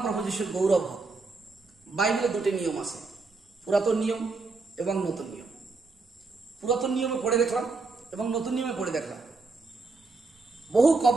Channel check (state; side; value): quieter; left; 3.9 dB